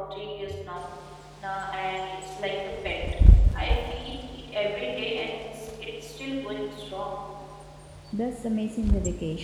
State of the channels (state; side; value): identical; both; correlation 1.00